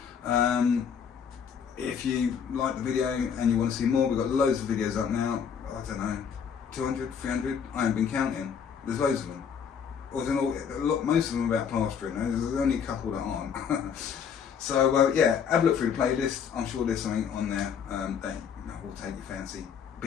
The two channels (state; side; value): quieter; right; 7.2 dB